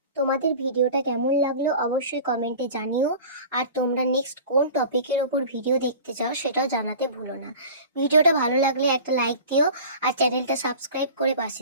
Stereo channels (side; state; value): both; inverted; correlation -0.39